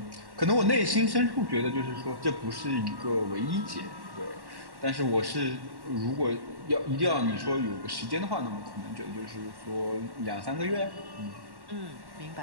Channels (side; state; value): left; late; 1.1 ms